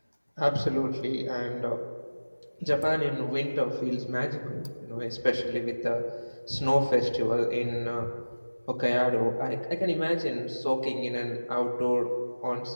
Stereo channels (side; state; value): both; inverted; correlation -1.00